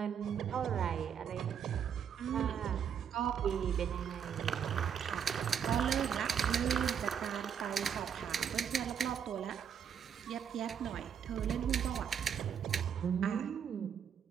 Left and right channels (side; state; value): left; quieter; 8.0 dB